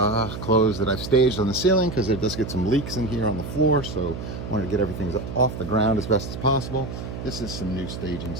clothes that I've staged on the ceiling because it does get some leaks in here on the floor, so I wanted to get everything off the ground as best as possible. This is some new staging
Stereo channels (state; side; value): noise; right; hum, 8 dB below the sound